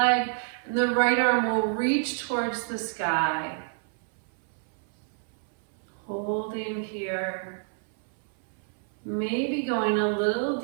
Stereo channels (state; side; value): silent; left; 58 dB below the other